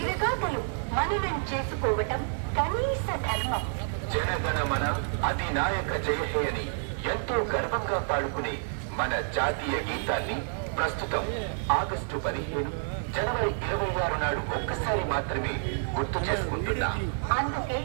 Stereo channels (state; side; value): silent; left; digital silence